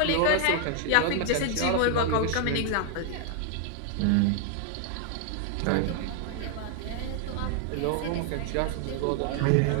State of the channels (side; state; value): both; different; correlation 0.00